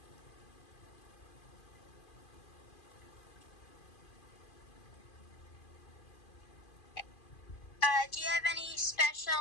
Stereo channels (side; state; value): right; late; 2.4 ms